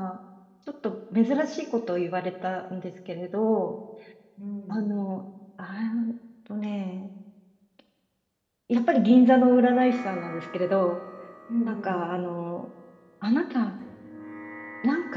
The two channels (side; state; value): both; identical; correlation 1.00